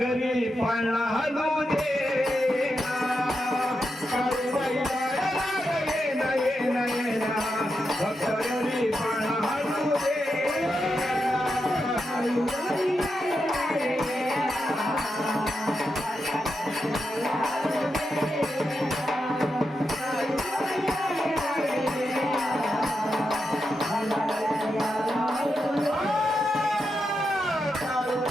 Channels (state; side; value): normal; both; correlation 0.86